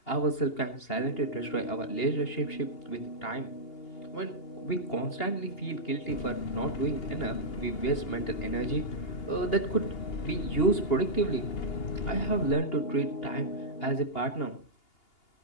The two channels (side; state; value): right; late; 2.8 ms